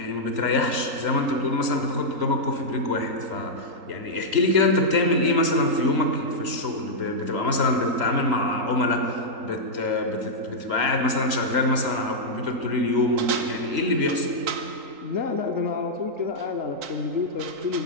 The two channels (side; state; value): left; late; 3.8 ms